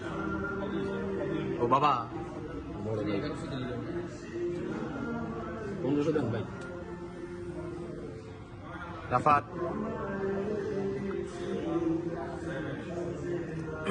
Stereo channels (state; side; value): identical; both; correlation 1.00